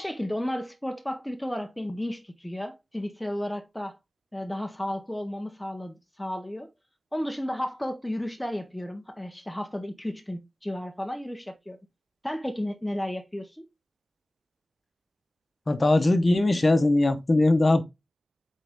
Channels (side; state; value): both; normal; correlation 0.98